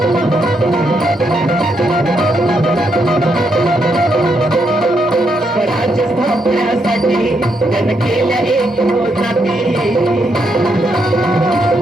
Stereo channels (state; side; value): normal; both; correlation 0.78